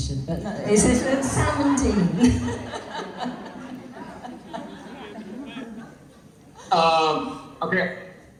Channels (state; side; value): identical; both; correlation 1.00